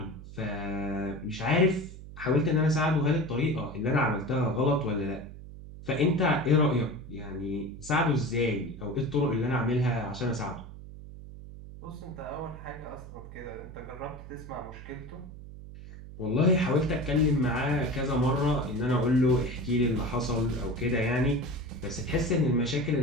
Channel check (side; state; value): right; noise; hum, 14 dB below the sound